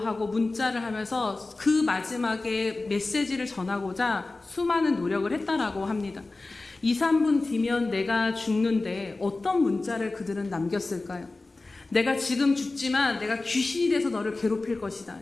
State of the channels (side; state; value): right; quieter; 3.3 dB